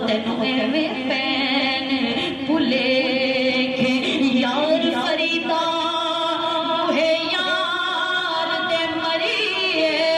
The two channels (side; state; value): both; identical; correlation 1.00